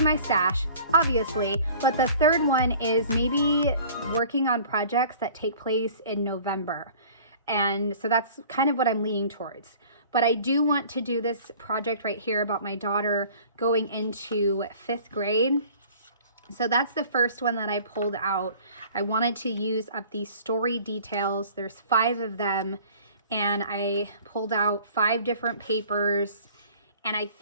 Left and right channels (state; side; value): inverted; both; correlation -0.48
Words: my stash, obviously, but the third one is maybe working on projects that take place in November. And so that's kind of what I'm leaning towards. But I do want to do this project right here about my daughter going into 5th grade. So that's the first one that I pulled out. I wanted to use up these story details. There's 5 of them, and I pulled out 5 different papers. And I